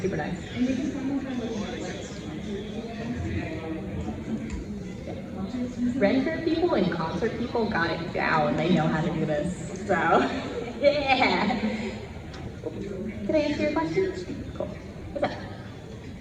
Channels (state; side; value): identical; both; correlation 1.00